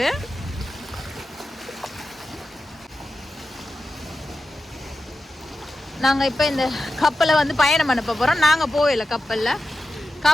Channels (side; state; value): both; normal; correlation 0.92